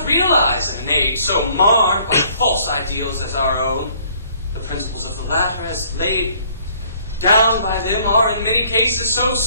realize in an age so marred by false ideals as our own. The principles of the latter, as laid down by them, are in many cases so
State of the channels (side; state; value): both; inverted; correlation -0.60